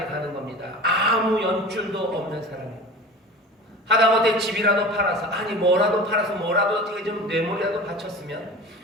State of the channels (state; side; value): normal; both; correlation 0.35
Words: 가는 겁니다. 아무 연줄도 없는 사람이에요. 하다못해 집이라도 팔아서, 뭐라도 팔아서 뭐라도 어떻게 좀 뇌물이라도 바쳤으면